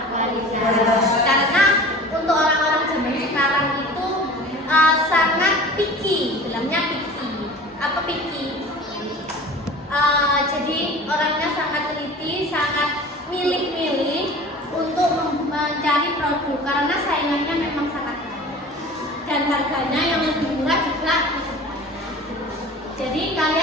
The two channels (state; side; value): normal; both; correlation 0.40